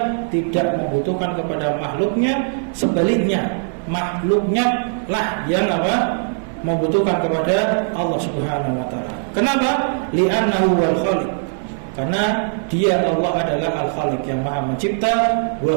tidak membutuhkan kepada makhluknya. Sebaliknya, makhluknya lah yang apa? Membutuhkan kepada Allah Subhanahu wa ta'ala. Kenapa? Li'annahu wal khaliq, karena dia Allah adalah al-khaliq yang maha mencipta.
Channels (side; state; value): left; silent; digital silence